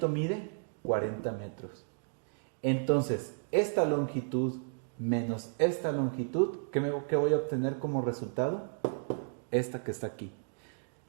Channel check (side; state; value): left; silent; digital silence